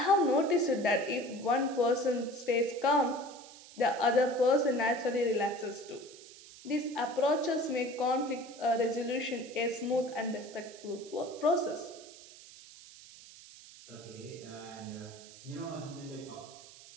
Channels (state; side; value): noise; right; hiss, 19 dB below the sound